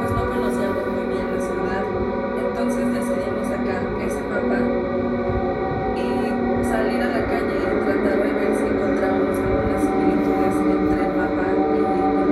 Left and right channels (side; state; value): both; identical; correlation 1.00